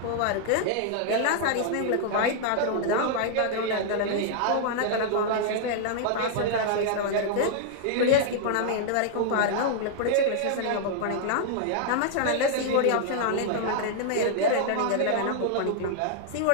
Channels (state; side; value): different; both; correlation -0.01